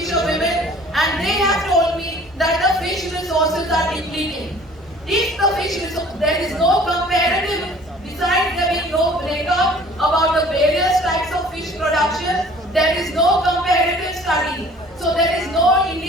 women and they have told me that the fish resources are depleting. If the there is no comparative, besides there being no breakup about the various types of fish production, there is no comparative study. So there is no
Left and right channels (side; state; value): both; normal; correlation 0.51